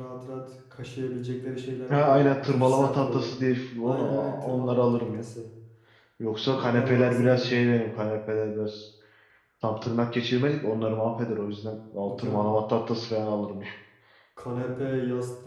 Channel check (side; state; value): both; identical; correlation 1.00